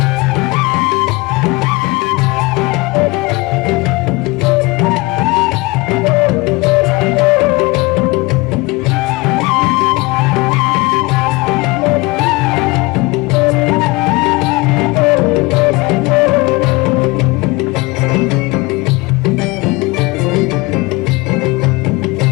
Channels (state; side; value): quieter; right; 24.3 dB